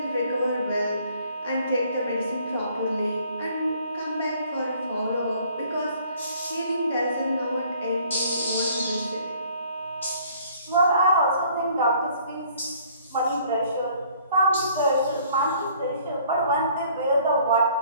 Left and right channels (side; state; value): both; inverted; correlation -0.58